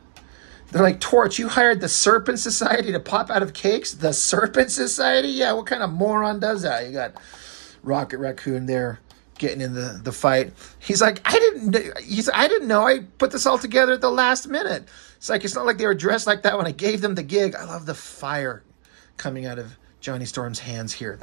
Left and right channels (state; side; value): silent; left; digital silence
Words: they're like, Torch, you hired the Serpent Society to pop out of cakes? The Serpent Society? Yeah, what kind of moron does that? You got Rocket Raccoon there getting in the fight. He's like, I didn't know I put this all together at the last minute. It's like, it's not like they were dressed like that when I gave them the gig. I love the fire coming out of Johnny Storm's hands here.